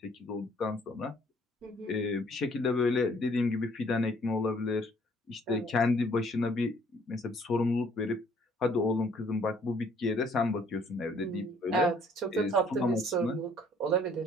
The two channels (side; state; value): both; normal; correlation 0.61